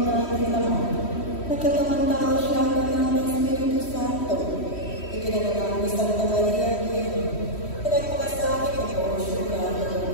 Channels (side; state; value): right; late; 3.1 ms